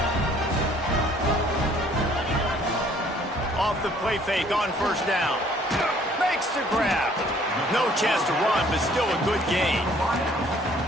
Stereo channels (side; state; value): both; normal; correlation 0.59